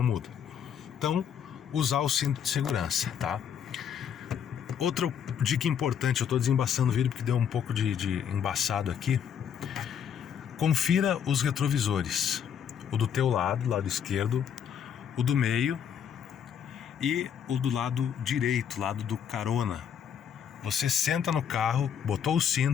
muda. Então, usar o cinto de segurança, tá? Outra dica importante, eu estou desembaçando o vídeo porque deu um pouco de embaçado aqui. Confira os retrovisores, o do teu lado esquerdo, o do meio e o do lado direito, lado do carona. Você senta no carro, botou o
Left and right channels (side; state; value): right; quieter; 8.3 dB